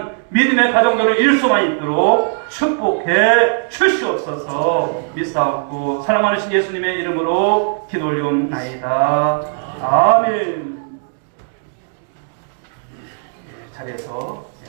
믿음의 가정들을 이룰 수만 있도록 축복해 주시옵소서. 믿사옵고 사랑 많으신 예수님의 이름으로 기도 올리옵나이다. 아멘. 자리에서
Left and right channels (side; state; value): left; silent; digital silence